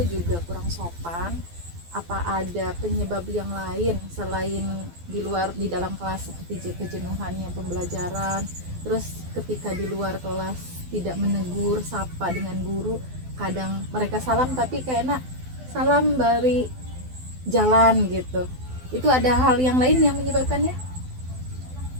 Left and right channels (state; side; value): late; left; 12 ms